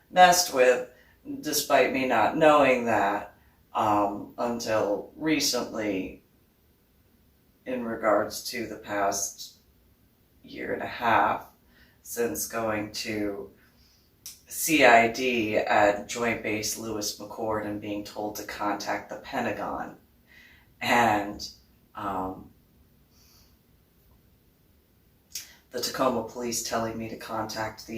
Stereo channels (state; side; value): identical; both; correlation 1.00